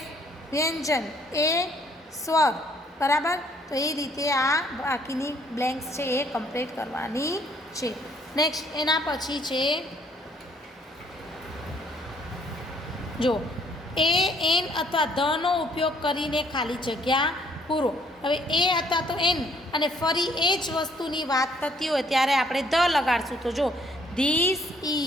વ્યંજન, એ સ્વર. બરાબર. તો એ રીતે આ બાકીની બ્લેન્ક્સ છે એ કમ્પ્લીટ કરવાની છે. નેક્સ્ટ એના પછી છે જો એ એન અથવા ધનો ઉપયોગ કરીને ખાલી જગ્યા પૂરો. હવે એ અથવા તો એન અને ફરી એ જ વસ્તુની વાત થતી હોય ત્યારે આપણે ધ લગાડશું. તો જો ધીસ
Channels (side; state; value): both; normal; correlation 0.64